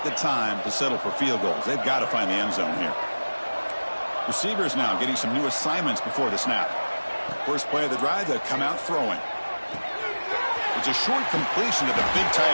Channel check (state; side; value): inverted; both; correlation -1.00